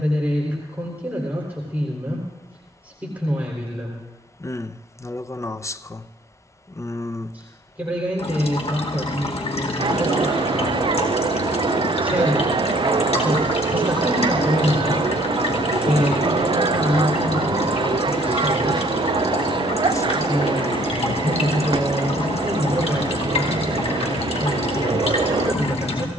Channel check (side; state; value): both; normal; correlation 0.59